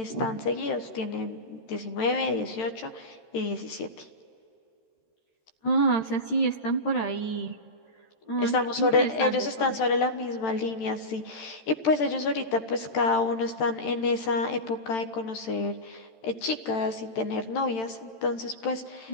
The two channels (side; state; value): right; late; 13 ms